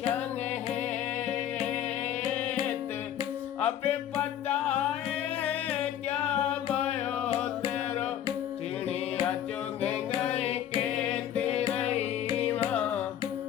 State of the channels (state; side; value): quieter; right; 10.7 dB